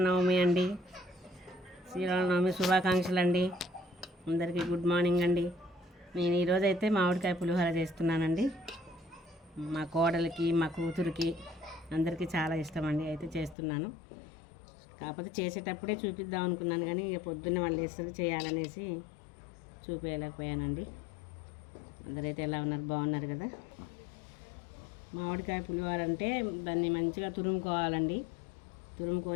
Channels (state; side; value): drops out; right; at 13.6 s